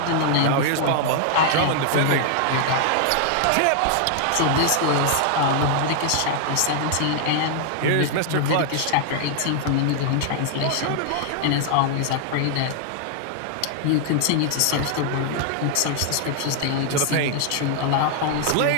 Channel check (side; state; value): both; different; correlation 0.00